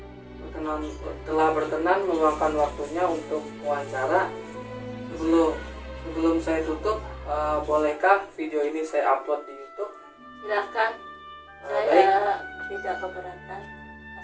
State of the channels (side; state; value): both; identical; correlation 1.00